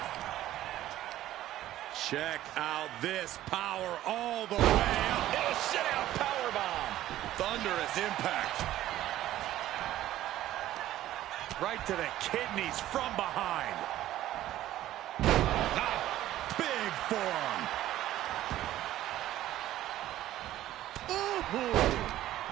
Check out this power all the way up. It'll sit out powerbomb. Thunderous impact. Right to the kidneys from behind. Big forearm. Ooh.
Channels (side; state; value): left; quieter; 13.8 dB